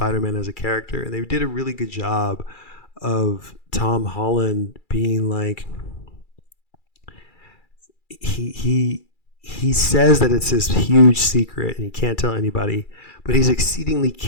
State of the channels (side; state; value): right; late; 2.3 ms